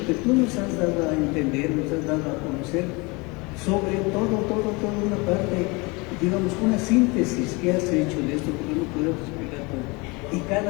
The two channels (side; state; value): right; quieter; 26.8 dB